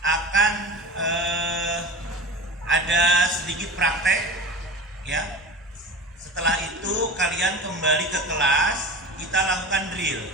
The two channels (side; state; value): both; normal; correlation 0.31